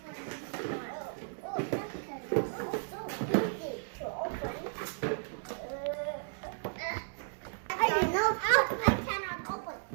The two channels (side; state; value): left; silent; digital silence